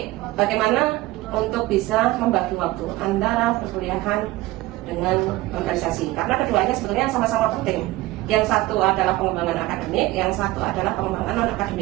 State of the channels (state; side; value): quieter; left; 18.4 dB